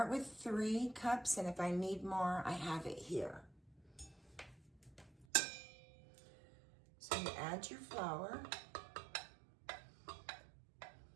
with 3 cups, and if I need more, I have it here. So you add your flour.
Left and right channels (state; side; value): drops out; left; at 5.2 s